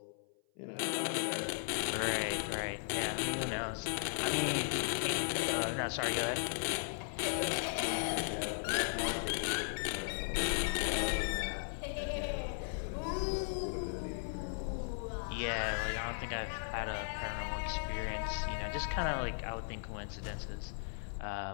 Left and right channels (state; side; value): silent; right; 53 dB below the other